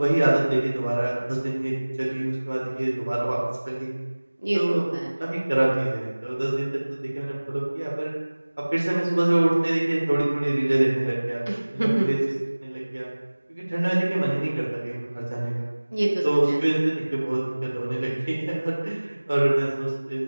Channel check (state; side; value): inverted; both; correlation -1.00